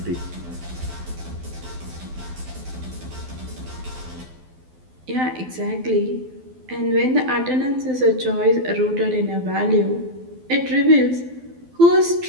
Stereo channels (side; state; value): left; late; 12 ms